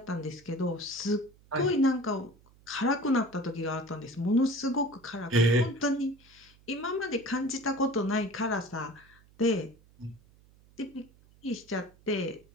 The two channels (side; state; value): right; noise; hum, 28 dB below the sound